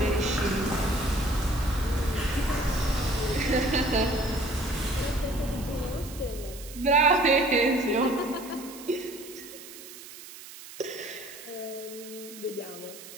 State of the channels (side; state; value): right; noise; hiss, 15 dB below the sound